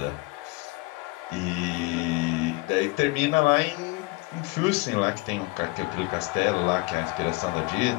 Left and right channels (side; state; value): right; quieter; 23.9 dB